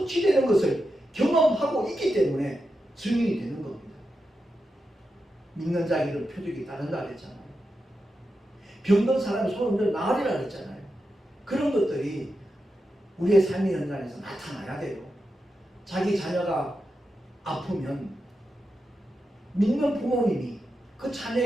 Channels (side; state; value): both; normal; correlation 0.88